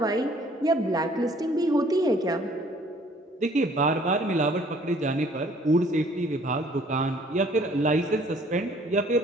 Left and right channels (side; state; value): both; normal; correlation 0.57